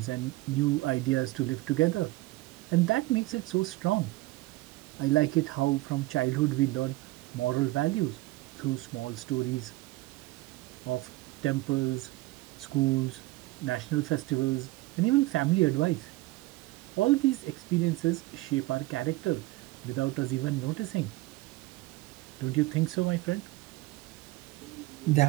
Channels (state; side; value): quieter; left; 19.6 dB